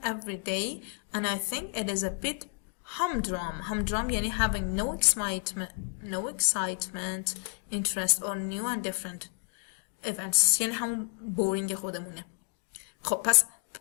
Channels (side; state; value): right; quieter; 31.1 dB